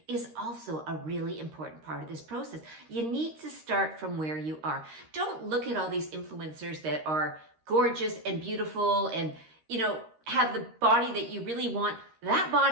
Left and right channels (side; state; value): left; late; 13 ms